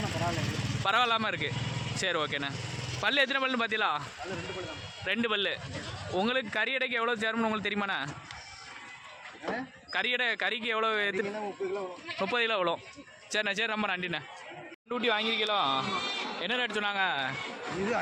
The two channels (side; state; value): both; identical; correlation 1.00